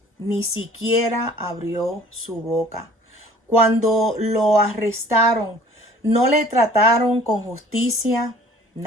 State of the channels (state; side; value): normal; both; correlation 0.50